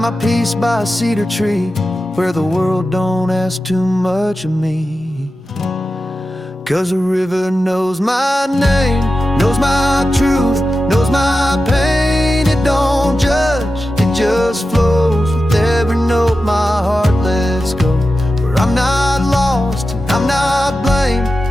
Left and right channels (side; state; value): both; normal; correlation 0.92